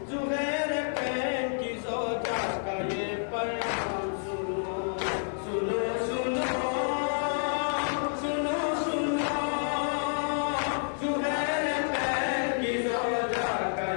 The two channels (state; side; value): silent; right; 58 dB below the other